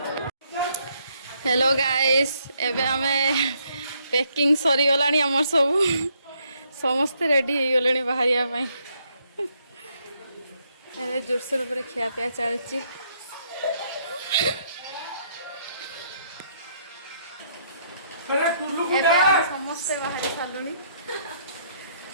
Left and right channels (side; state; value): both; inverted; correlation -0.71